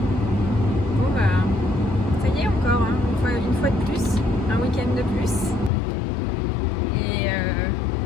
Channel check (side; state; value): right; drops out; at 5.7 s